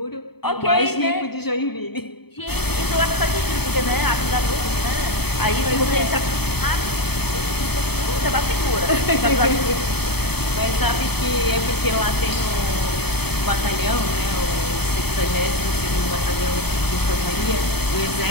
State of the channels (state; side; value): late; right; 0.97 ms